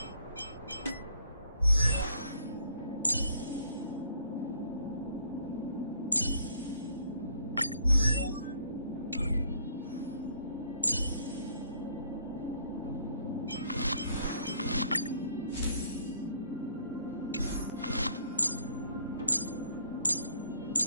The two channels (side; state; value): both; inverted; correlation -0.63